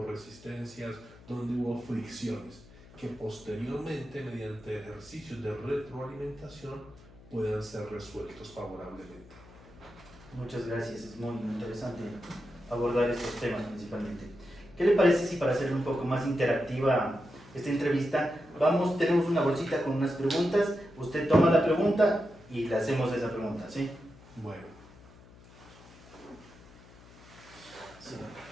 resistencias, dónde hubo fricciones, que posteriormente, mediante ejercicios de retroalimentación, puedan ser resueltos favorablemente. Muchas gracias, es muy interesante abordar estos temas principalmente. ¿Qué le parece si para hacer un poco más interactiva esta entrevista, tenemos una bolsita con unas preguntas, usted toma la pregunta y le hacemos esa pregunta, ¿sí? Bueno. Sí.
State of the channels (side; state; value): left; noise; hum, 22 dB below the sound